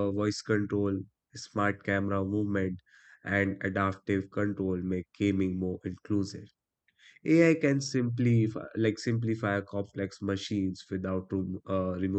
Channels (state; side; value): identical; both; correlation 1.00